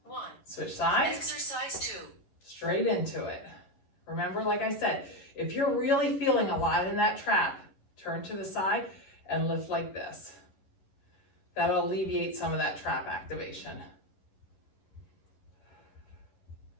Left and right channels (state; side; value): late; right; 11 ms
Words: 1. Switch sides. Exercise 2. Straight into it. Remember, like I said, if you're really feeling a lot in that trap, turn to the side and lift like this. That'll alleviate some of that trap activation.